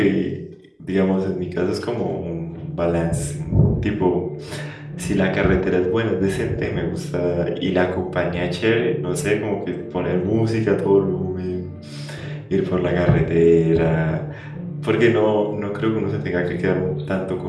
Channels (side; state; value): both; identical; correlation 1.00